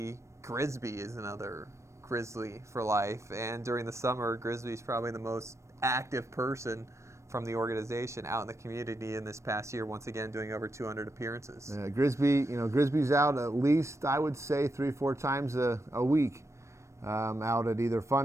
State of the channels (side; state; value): left; late; 0.14 ms